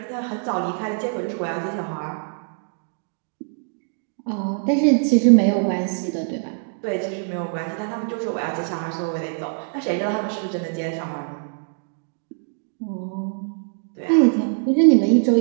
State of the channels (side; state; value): left; silent; digital silence